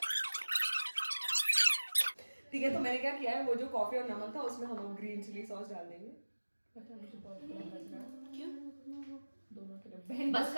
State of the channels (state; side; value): inverted; both; correlation -1.00